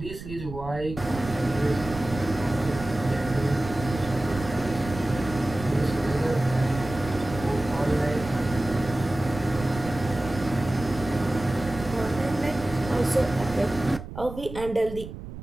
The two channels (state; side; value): noise; right; rumble, 11 dB below the sound